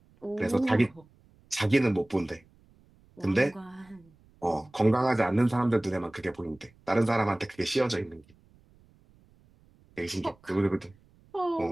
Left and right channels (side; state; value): right; noise; rumble, 30 dB below the sound